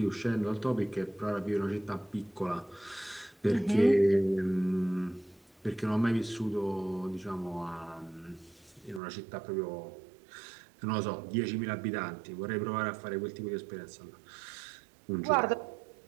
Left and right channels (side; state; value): left; drops out; at 9.0 s